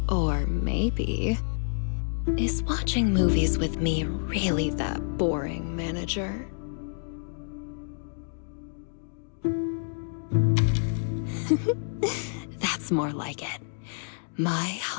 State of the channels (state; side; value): silent; right; digital silence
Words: Or maybe, is watching movies with me really that boring, manager? That's more like it. My